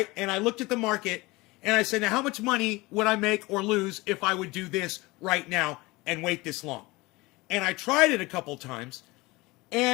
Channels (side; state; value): right; quieter; 22.2 dB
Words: And I looked at the market and I said, now how much money would I make or lose if I would do this right now and wait this long? And I tried it a couple times,